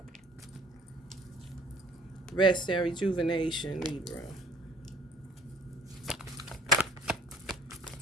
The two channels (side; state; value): both; normal; correlation 0.54